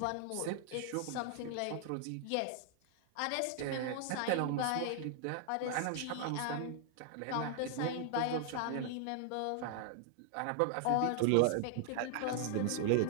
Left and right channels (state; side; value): different; both; correlation -0.01